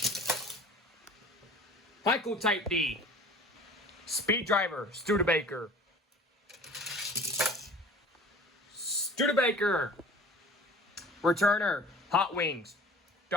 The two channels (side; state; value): both; normal; correlation 0.44